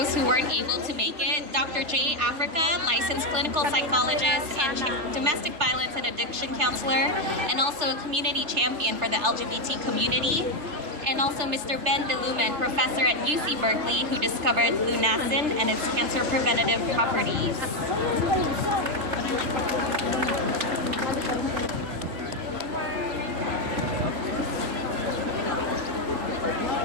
who weren't able to make it. Dr. J. Africa, licensed clinical psychologist and domestic violence and addiction counselor, and also a community champion for the LGBT community. And also Mr. Ben DeLumen, professor at UC Berkeley, who discovered lunacin and its cancer preventative properties.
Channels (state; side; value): late; left; 3.3 ms